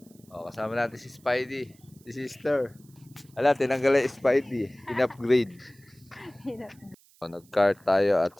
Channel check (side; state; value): right; noise; hiss, 29 dB below the sound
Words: Kasama natin si Spidey, si sister. Tinanggal yung Spidey. In-upgrade. Nag-car tayo at